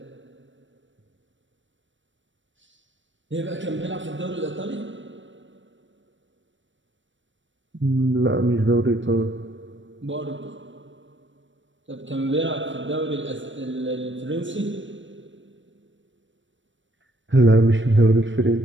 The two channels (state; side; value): late; left; 0.55 ms